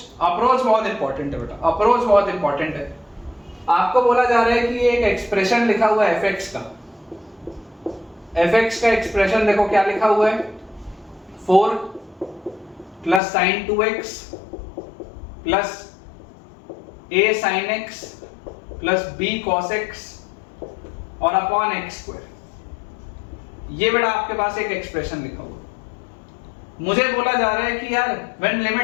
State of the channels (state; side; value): drops out; right; at 13.2 s